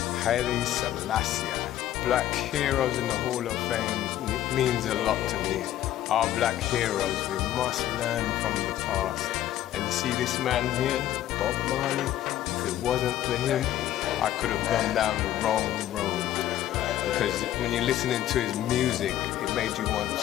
Haile Selassie. Black Heroes in the Hall of Fame means a lot to me. Our black heroes, we must learn from the past. And you see this man here, Bob Marley, if it wasn't for him, I could have gone down the wrong road. Because when you're listening to his music, it made you want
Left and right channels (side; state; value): right; quieter; 12.7 dB